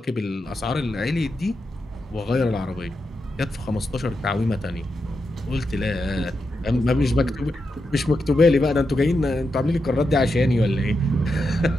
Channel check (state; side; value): normal; both; correlation 0.87